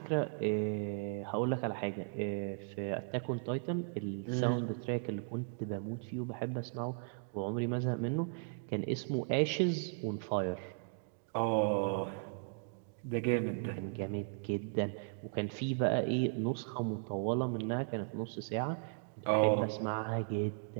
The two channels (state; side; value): silent; left; digital silence